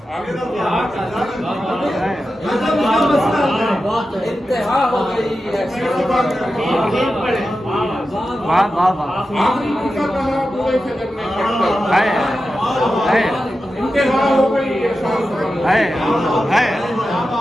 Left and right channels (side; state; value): both; normal; correlation 0.91